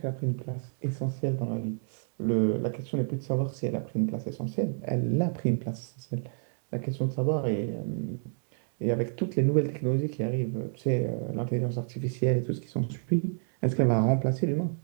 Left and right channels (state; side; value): silent; left; digital silence